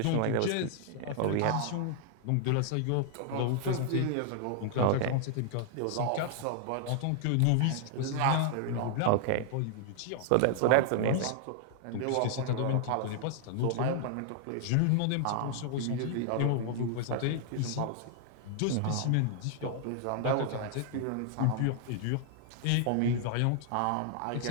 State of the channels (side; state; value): both; different; correlation 0.00